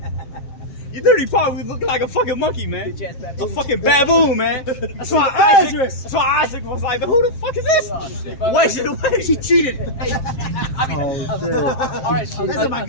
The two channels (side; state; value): right; late; 7.4 ms